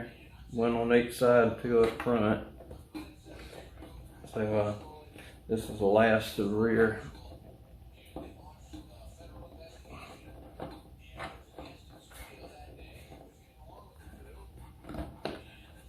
one on each side, and two up front. So this is the last to the rear.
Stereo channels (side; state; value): both; identical; correlation 1.00